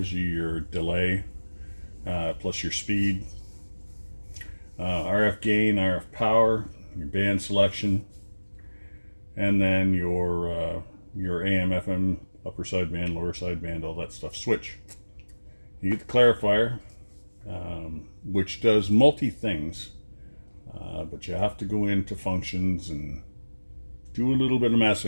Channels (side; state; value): both; inverted; correlation -1.00